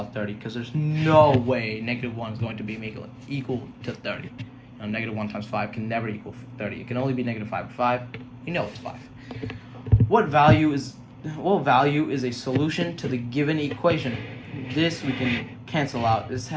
30, because there's no way negative 1 is going to be equal to 30. You know Negative 1 times 5 can never equal 30. It can only be negative 5 or 5. You know it's 5. What value is a solution to the given equation? This we can cancel out. This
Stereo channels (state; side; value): identical; both; correlation 1.00